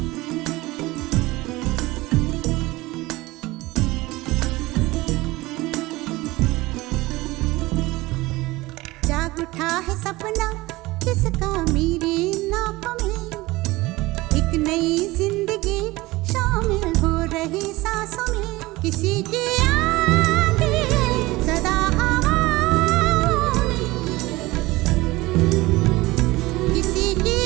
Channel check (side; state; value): left; quieter; 20.2 dB